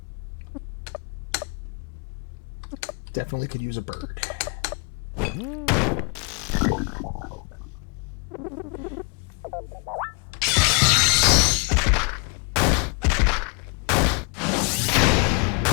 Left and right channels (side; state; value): right; quieter; 34.9 dB